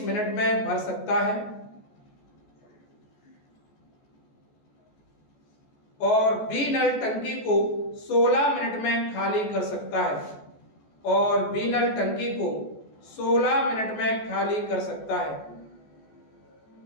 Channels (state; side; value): late; right; 14 ms